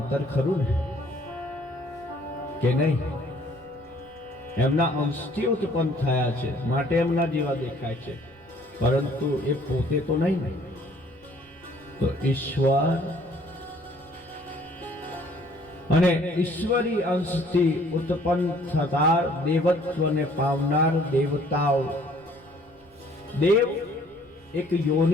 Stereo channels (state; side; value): noise; right; rumble, 28 dB below the sound